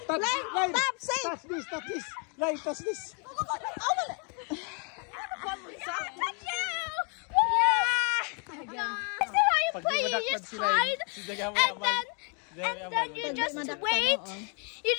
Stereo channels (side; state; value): right; quieter; 38.2 dB